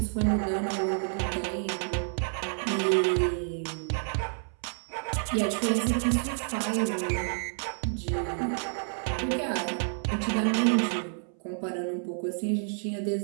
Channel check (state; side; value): silent; left; 58 dB below the other